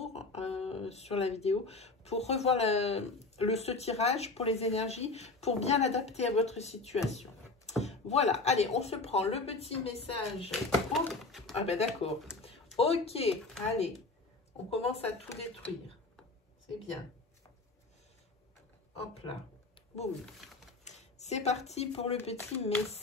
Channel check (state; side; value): quieter; right; 3.4 dB